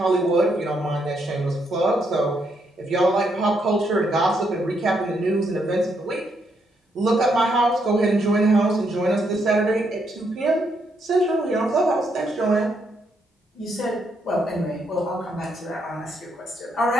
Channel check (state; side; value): normal; both; correlation 0.76